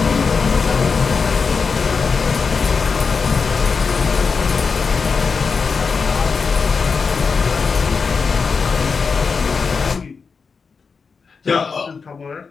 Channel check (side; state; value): right; quieter; 5.2 dB